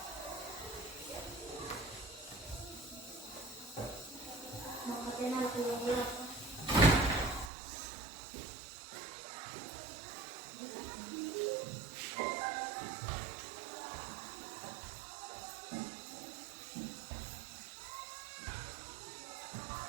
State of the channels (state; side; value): drops out; left; at 7.5 s